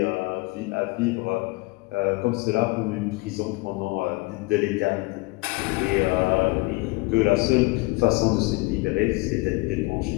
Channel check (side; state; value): right; quieter; 24.6 dB